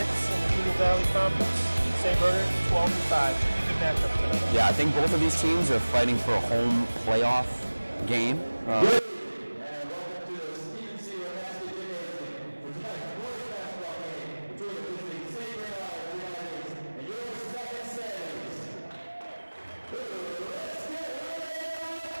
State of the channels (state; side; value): inverted; both; correlation -1.00